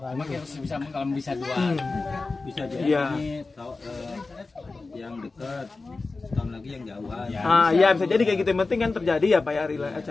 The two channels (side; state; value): right; quieter; 3.7 dB